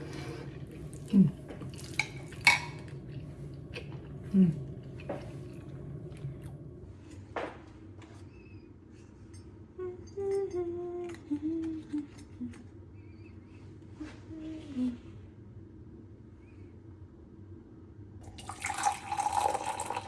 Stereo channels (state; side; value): identical; both; correlation 1.00